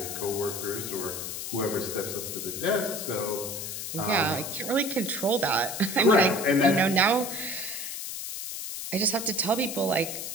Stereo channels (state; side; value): noise; left; hiss, 6 dB below the sound